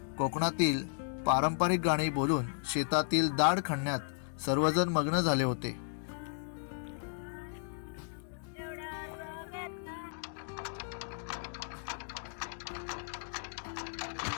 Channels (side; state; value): right; silent; digital silence